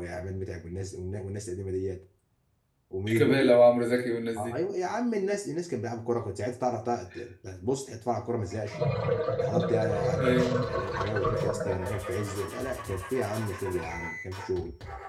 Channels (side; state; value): both; identical; correlation 1.00